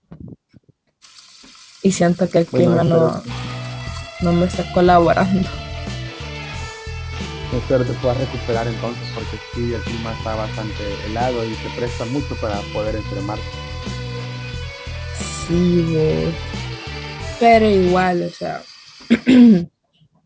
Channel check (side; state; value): both; identical; correlation 1.00